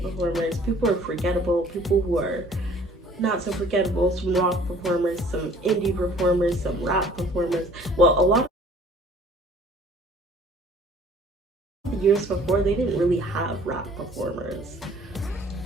performers, people who are forgettable, people who are not so forgettable, some rock performers, some indie performers, some rap performers. Well, a lot of the years before, they didn't really have rap performers.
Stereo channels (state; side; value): normal; both; correlation 0.54